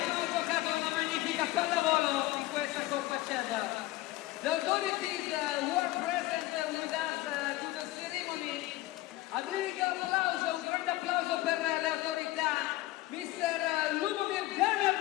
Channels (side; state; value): right; quieter; 17.4 dB